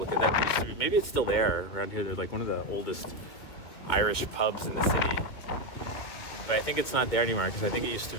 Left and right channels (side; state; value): right; late; 2.2 ms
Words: at that, maybe it's still there around here. They're like one of the oldest Irish pubs in the city. But I think it's not there anymore because I think it used to